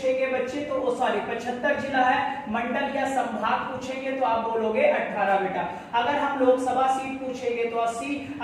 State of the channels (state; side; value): identical; both; correlation 1.00